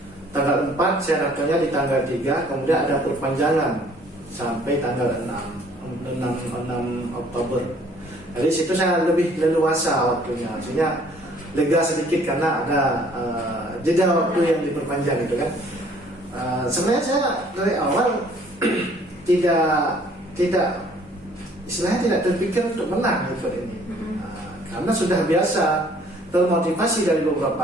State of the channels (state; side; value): normal; both; correlation 0.58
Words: Tanggal 4 saya daftarnya di tanggal 3, kemudian ada perpanjangan sampai tanggal 6 Oktober. Jadi situ saya lebih leluasa waktunya, maksudnya lega sedikit karena ada jeda waktu yang diperpanjang gitu kan. Sebenarnya saya dari awal tidak istilahnya tidak terpikir untuk menang gitu ini, karena sudah biasa termotivasi dari